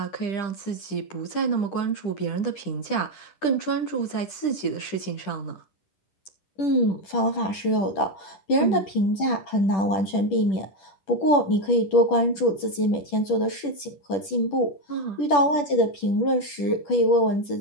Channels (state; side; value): late; right; 10 ms